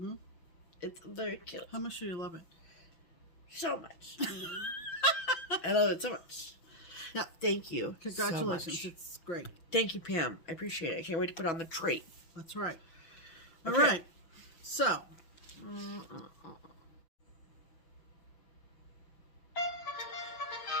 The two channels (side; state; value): right; late; 5.8 ms